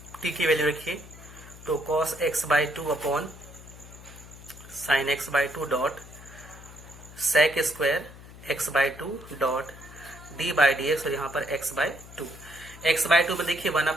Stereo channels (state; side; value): noise; left; hum, 17 dB below the sound